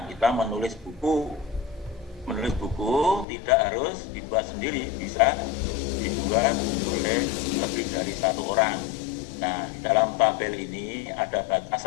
kita menulis buku tidak harus dibuat sendiri, bisa dibuat oleh lebih dari 1 orang. Nah, dalam tabel ini ada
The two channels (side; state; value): right; drops out; at 3.2 s